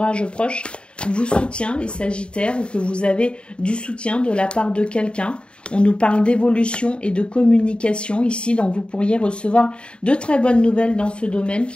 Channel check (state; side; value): late; right; 0.054 ms